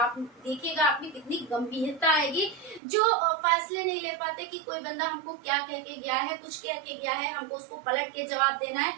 देखिएगा आप में कितनी गंभीरता आएगी। जो फैसले नहीं ले पाते कि कोई बंदा हमको क्या कह के गया है, कुछ कह के गया है, हमको उसको पलट के जवाब देना है,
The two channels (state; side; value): drops out; left; at 2.8 s